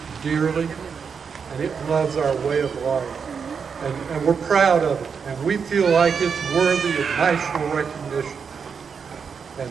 dearly, and it loves our way of life. And we're proud of it, and we feel like it's worthy of national recognition. And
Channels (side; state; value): left; quieter; 6.2 dB